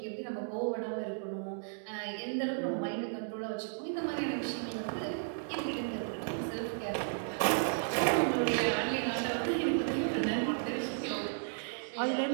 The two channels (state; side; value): silent; left; digital silence